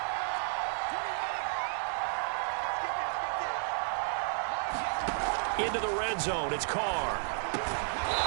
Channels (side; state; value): left; silent; digital silence